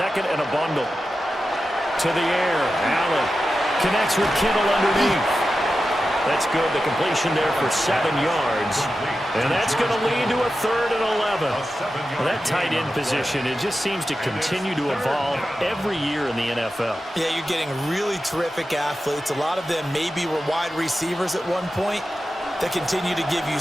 and a bundle. To the air, Allen connects with Kittle underneath. That's good. The completion there for 7 yards. And that's going to lead to a 3rd and 11. Well, that tight end position, it just seems to continue to evolve every year in the NFL. Yeah, you're getting really terrific athletes. A lot of them maybe were wide receivers at one point that continue to give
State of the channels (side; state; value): both; normal; correlation 0.92